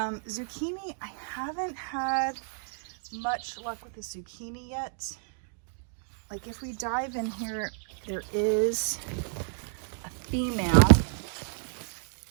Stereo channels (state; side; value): silent; left; digital silence